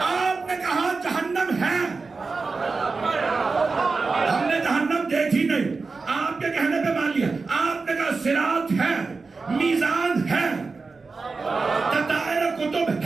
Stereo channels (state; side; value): quieter; left; 4.2 dB